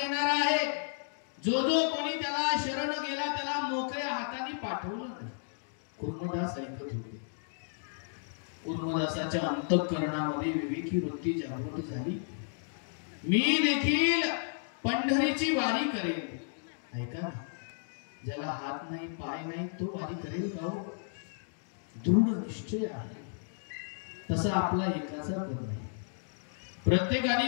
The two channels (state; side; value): silent; right; digital silence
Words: आहे. जो कोणी त्याला शरण गेला त्याला मोकळ्या हाताने पाठवलं नाही. कुर्मदास ऐकत होते. कुर्मदासाच्या अंतःकरणामध्ये विवेकी वृत्ती जागृत झाली. मी देखील पंढरीची वारी करेल. ऐका, ज्याला हात नाही पाय नाही तो वारी करेल का? दृढ निश्चय आहे. तसा आपला एकाचा पण नाही. प्रत्येकाने